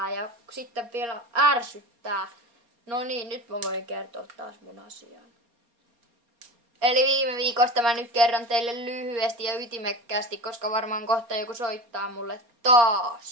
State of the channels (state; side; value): late; left; 4.3 ms